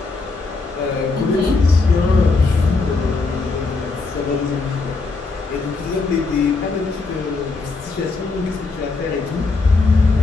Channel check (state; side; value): quieter; right; 3.9 dB